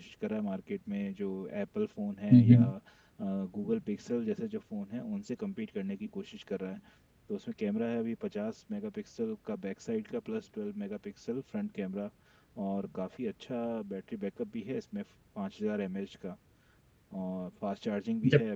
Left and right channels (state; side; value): identical; both; correlation 1.00